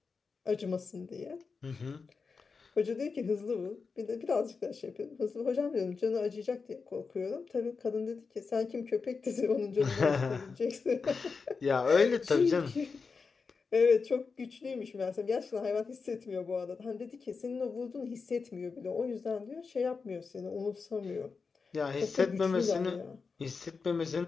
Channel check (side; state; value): right; quieter; 4.9 dB